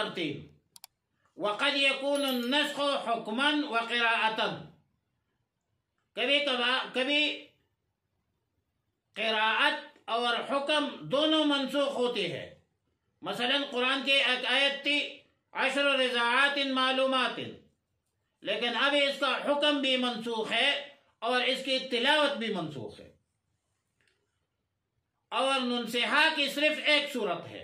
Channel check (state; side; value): identical; both; correlation 1.00